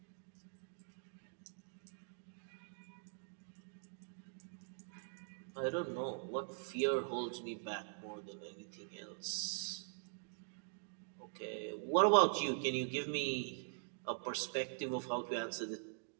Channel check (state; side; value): silent; left; digital silence